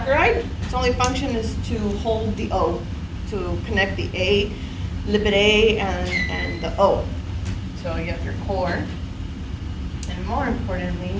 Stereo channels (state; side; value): identical; both; correlation 1.00